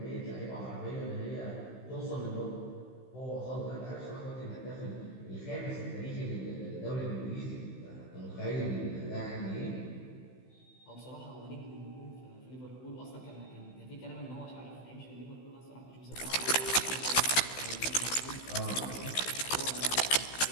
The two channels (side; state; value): right; late; 16 ms